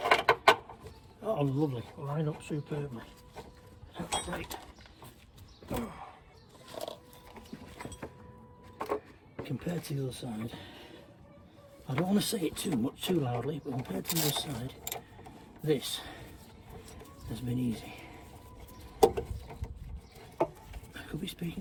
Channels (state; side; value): identical; both; correlation 1.00